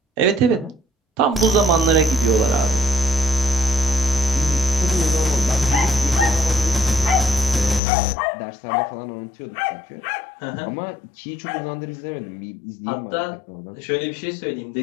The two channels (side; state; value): right; drops out; at 7.8 s